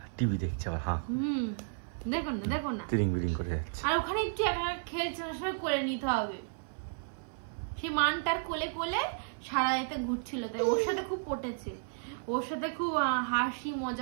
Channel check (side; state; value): left; silent; 56 dB below the other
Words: টিভি দেখছে আবার। হ্যাঁ দেখো না দেখো না, তিরিং বিরিং করে যাচ্ছে। আর ওখানে একটু একা খেলছে, সবাই করে নিতে হবে। সেই মানটার কোলে কোলে সারা এতে ঘুরছিল, তাই ওর সাথে খুব পটেছে, ওর সাথে খুব হাসি